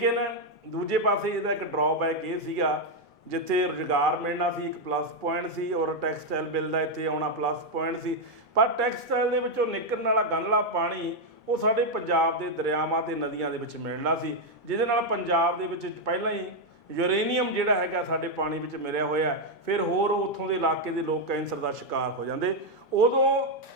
ਦੂਜੇ ਪਾਸੇ ਇਹਦਾ ਇੱਕ ਡਰਾਬੈਕ ਇਹ ਸੀਗਾ ਜਿੱਥੇ ਰੁਜ਼ਗਾਰ ਮਿਲਣਾ ਸੀ ਇੱਕ ਪਲੱਸ ਪੁਆਇੰਟ ਸੀ, ਔਰ ਟੈਕਸਟਾਈਲ ਬਿੱਲ ਦਾ ਇੱਥੇ ਆਉਣਾ ਪਲੱਸ ਪੁਆਇੰਟ ਸੀ। ਪਰ ਟੈਕਸਟਾਈਲ ਦੇ ਵਿੱਚੋਂ ਨਿਕਲਣ ਵਾਲਾ ਗੰਧਲਾ ਪਾਣੀ ਉਹ ਸਾਡੇ ਪੰਜਾਬ ਦੇ ਦਰਿਆਵਾਂ ਤੇ ਨਦੀਆਂ ਦੇ ਵਿੱਚ ਮਿਲਣਾ ਸੀ, ਜਿਹਦੇ ਨਾਲ ਪੰਜਾਬ ਦੇ ਵਿੱਚ ਪਹਿਲਾਂ ਹੀ ਯੂਰੇਨੀਅਮ ਜਿਹੜਾ ਹੈਗਾ ਸਾਡੇ ਪਾਣੀ ਵਿੱਚ ਮਿਲਿਆ ਹੋਇਆ, ਫਿਰ ਹੋਰ ਉੱਥੋਂ ਦੇ ਇਲਾਕੇ ਦੇ ਲੋਕ ਕੈਂਸਰ ਦਾ ਸ਼ਿਕਾਰ ਹੋ ਜਾਂਦੇ। ਉਦੋਂ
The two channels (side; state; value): both; normal; correlation 0.02